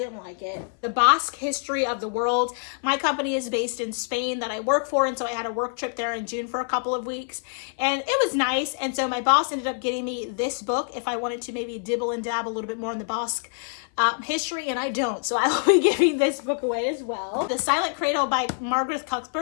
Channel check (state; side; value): silent; right; 56 dB below the other